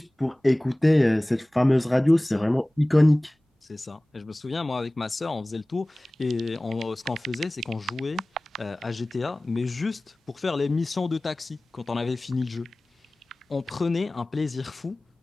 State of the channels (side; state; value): both; normal; correlation 0.98